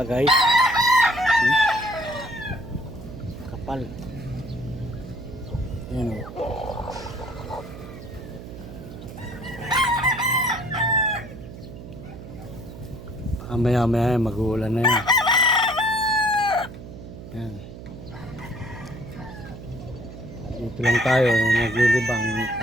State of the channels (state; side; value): noise; right; hum, 13 dB below the sound